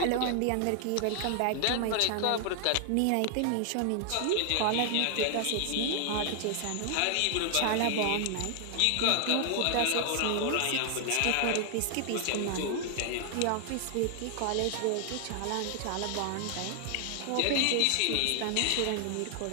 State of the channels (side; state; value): both; different; correlation 0.00